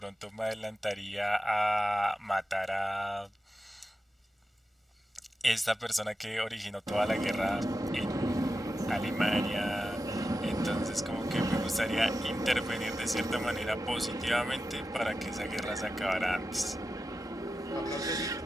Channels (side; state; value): both; normal; correlation 0.91